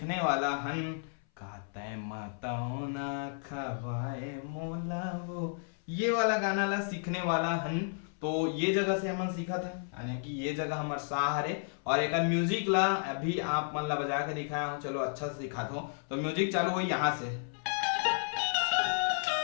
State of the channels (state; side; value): silent; right; 56 dB below the other